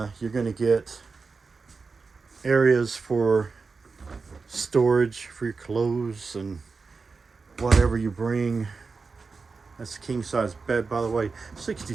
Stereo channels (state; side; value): quieter; left; 4.5 dB